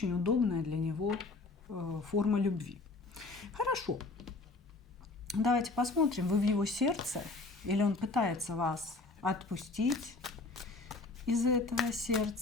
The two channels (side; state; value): right; quieter; 3.5 dB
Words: удобная для него форма любви. Хорошо. Давайте посмотрим, вы в его сердце или он пытается вас отпустить из этого